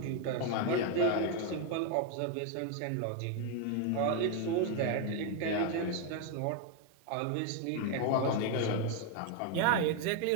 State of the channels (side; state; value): both; different; correlation 0.01